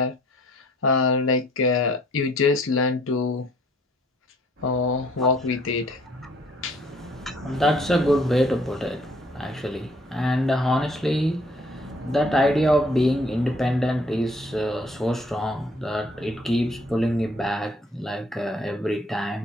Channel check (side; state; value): both; normal; correlation 0.60